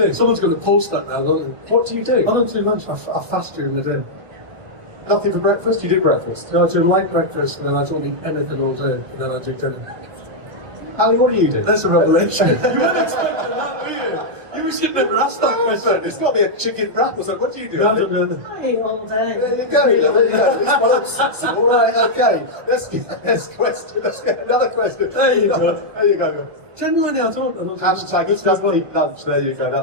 Someone's going to post that now, don't they? What do you do? I don't do lunch. I fast during the day. Nothing for breakfast? You do breakfast? No, I do light breakfast, and then I don't eat anything all day, and then I do dinner. Ali, what do you do? That's a revelation. You weren't expecting that, were you? You should never ask that question. It's got to be a chicken wrap or something. What do you do? No, I don't do anything. I eat all day. There you go. There you go. It's well obsessive. All right, okay. Let's get another question. There you go. There you go. Genuinely, I don't. Hashtag it's just eat lunch. There you go.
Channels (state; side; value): late; left; 1.2 ms